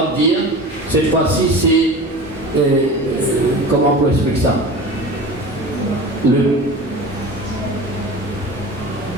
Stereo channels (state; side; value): normal; both; correlation 0.35